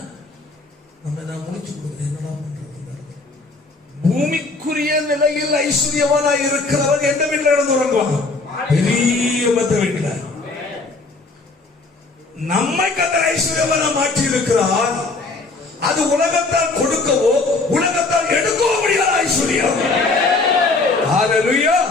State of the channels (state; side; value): quieter; right; 3.6 dB